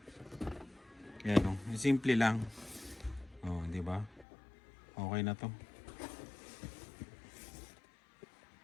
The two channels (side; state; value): right; drops out; at 4.2 s